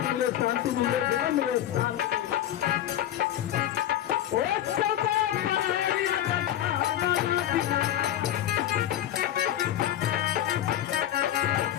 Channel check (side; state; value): right; quieter; 12.2 dB